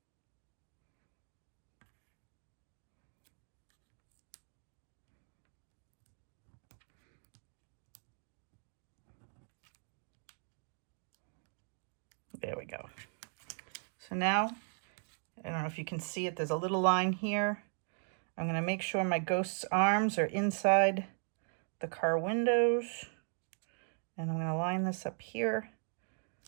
There we go. So now, I don't know if you can see it, there's a little line here. I'm going to make sure my ghost's arms are inside the car windows. And I'm going to line this up here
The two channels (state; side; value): silent; left; 52 dB below the other